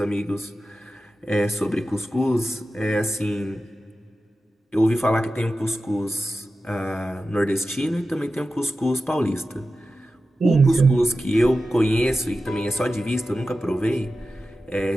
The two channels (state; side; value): normal; both; correlation 0.93